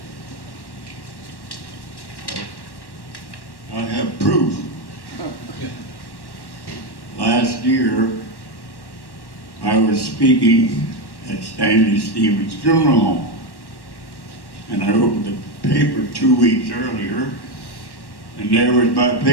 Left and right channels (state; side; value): late; right; 1.1 ms